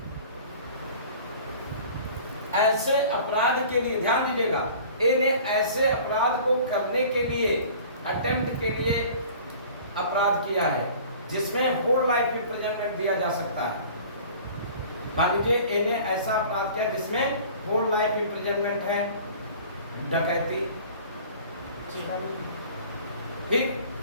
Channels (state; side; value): inverted; both; correlation -0.45